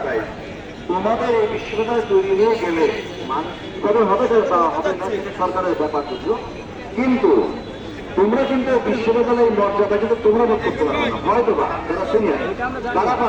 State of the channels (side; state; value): both; identical; correlation 1.00